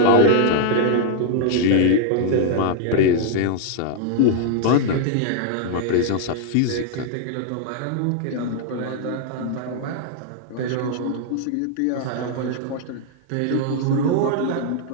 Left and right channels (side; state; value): both; different; correlation 0.00